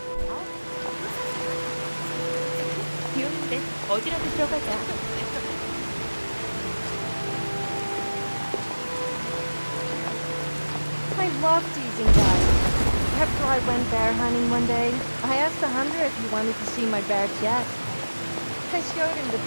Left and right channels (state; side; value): inverted; both; correlation -1.00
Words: 비 오는데 어디라도 들어가자. I love teasing guys. After I went bear hunting one day, I asked the hunter if he wanted to see my bear chest. I showed him the